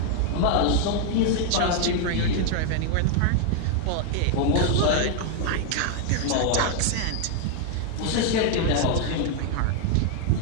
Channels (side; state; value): both; different; correlation 0.00